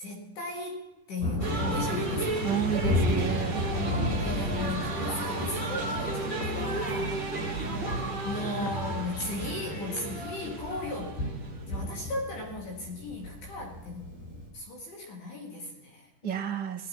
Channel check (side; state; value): right; late; 10 ms